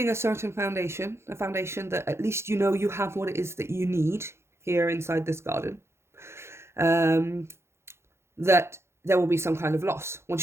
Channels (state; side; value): late; left; 0.13 ms